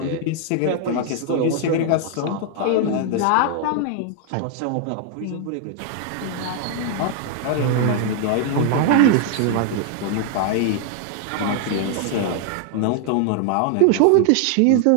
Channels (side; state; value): both; different; correlation 0.00